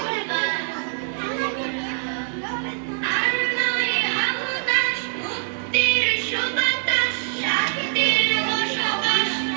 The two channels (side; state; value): left; silent; 63 dB below the other